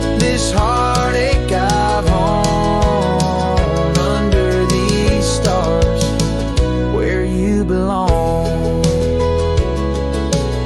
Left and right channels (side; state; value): both; identical; correlation 1.00